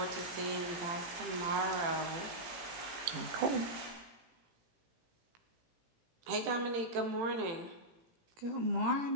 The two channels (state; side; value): late; left; 18 ms